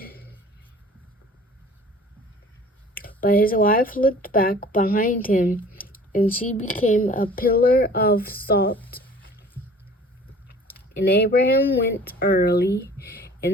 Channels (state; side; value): normal; both; correlation 0.48